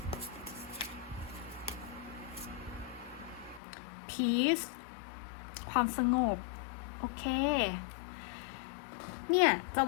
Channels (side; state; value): right; drops out; at 3.6 s